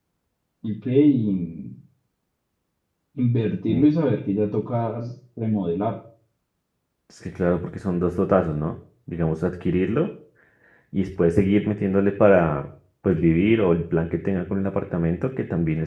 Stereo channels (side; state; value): both; identical; correlation 1.00